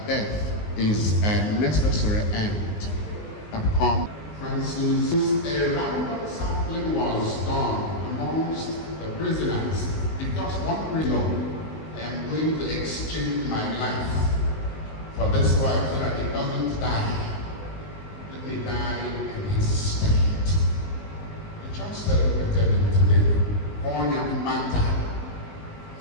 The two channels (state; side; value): late; right; 19 ms